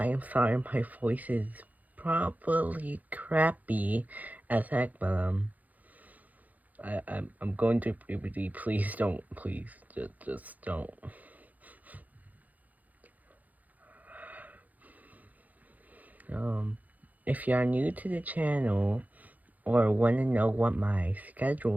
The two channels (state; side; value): late; left; 0.079 ms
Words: am sorry my voice is probably crappy as heck, but I'm going through puberty. Please don't. Please, just don't. If you are new to the channel or want to know what my